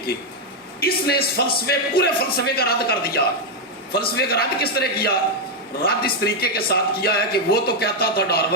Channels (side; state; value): both; normal; correlation 0.02